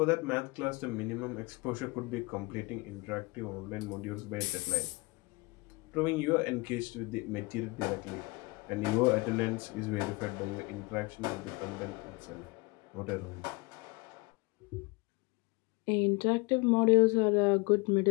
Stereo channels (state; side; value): quieter; right; 26.0 dB